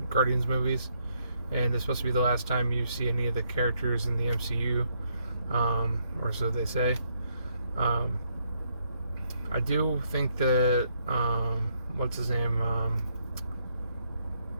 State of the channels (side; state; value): both; inverted; correlation -0.74